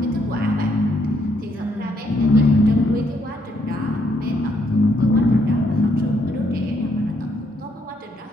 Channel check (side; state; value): both; normal; correlation 0.73